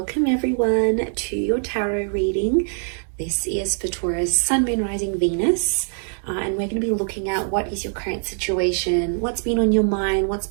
everyone to your tarot reading. This is for Taurus, Sun, Moon, Rising, Venus. And we're going to be looking at what is your current situation, what's been on your mind, what's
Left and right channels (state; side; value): silent; left; 64 dB below the other